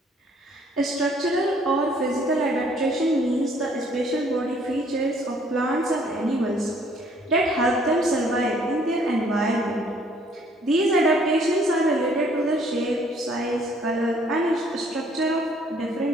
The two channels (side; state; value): both; normal; correlation 0.61